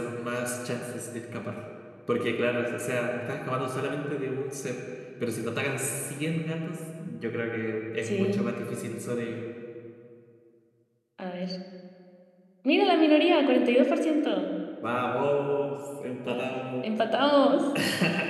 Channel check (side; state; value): both; identical; correlation 1.00